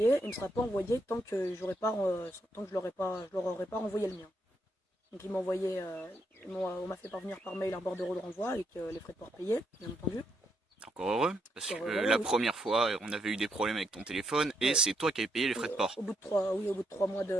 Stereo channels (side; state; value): both; normal; correlation 0.77